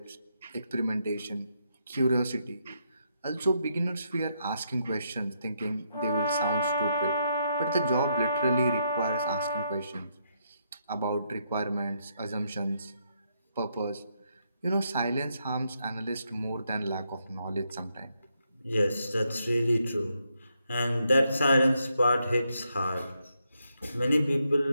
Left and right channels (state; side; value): inverted; both; correlation -0.78